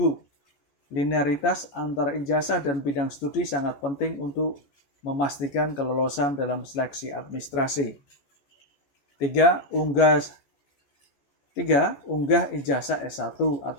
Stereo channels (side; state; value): right; late; 14 ms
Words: linearitas antara ijazah dan bidang studi sangat penting untuk memastikan kelolosan dalam seleksi administrasi. 3. Unggah ijazah S1